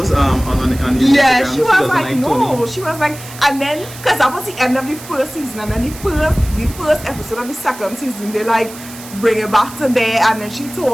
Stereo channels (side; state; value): right; noise; hiss, 16 dB below the sound